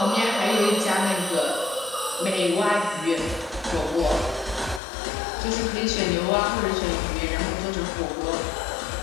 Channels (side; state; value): right; drops out; at 4.8 s